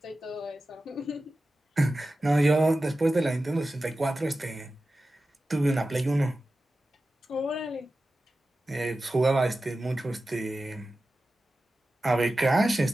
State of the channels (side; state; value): both; normal; correlation 0.94